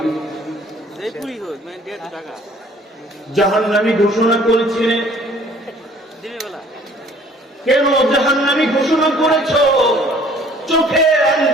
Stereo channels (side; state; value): both; normal; correlation 0.55